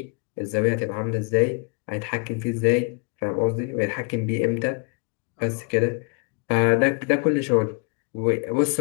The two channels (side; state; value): right; quieter; 34.7 dB